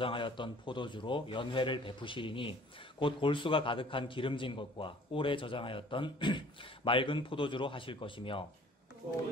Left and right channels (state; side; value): normal; both; correlation 0.52